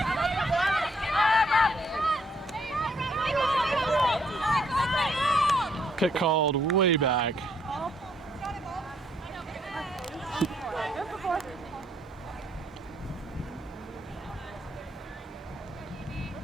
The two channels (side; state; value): both; normal; correlation 0.70